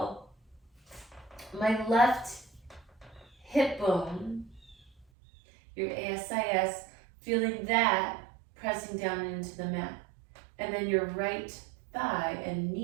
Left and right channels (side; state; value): left; drops out; at 5.1 s